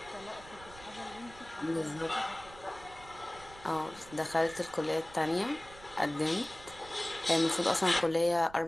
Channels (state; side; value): noise; right; rumble, 19 dB below the sound